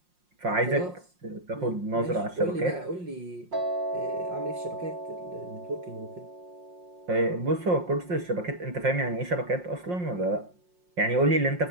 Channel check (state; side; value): late; left; 5.6 ms